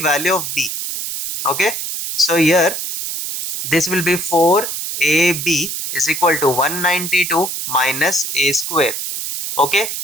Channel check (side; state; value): right; noise; hiss, 4 dB below the sound